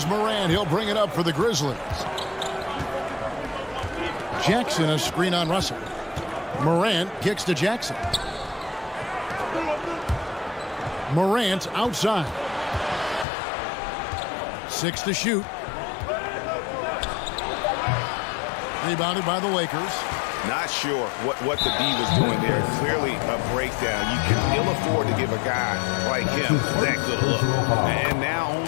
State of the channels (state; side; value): drops out; right; at 13.2 s